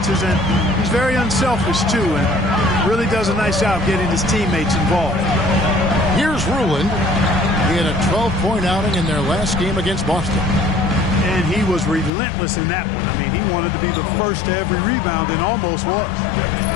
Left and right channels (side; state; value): right; drops out; at 12.1 s